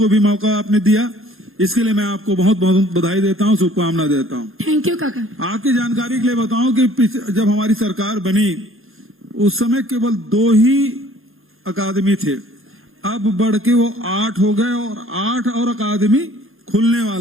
भी मौका आपने दिया। इसके लिए मैं आपको बहुत बहुत बधाई देता हूं, शुभकामना देता हूं। थैंक यू काका। आपकी जानकारी के लिए बताऊं कि जब हमारी सरकार बनी उस समय केवल 2 ही अकादमी थे, अब बढ़ के वो 8 हो गए और 8 और अकादमी खुलने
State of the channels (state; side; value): late; left; 0.60 ms